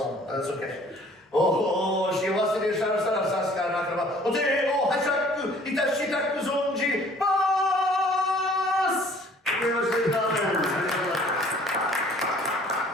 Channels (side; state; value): both; normal; correlation 0.54